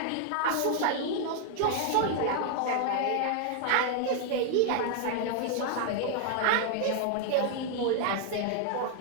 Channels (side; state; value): both; different; correlation 0.00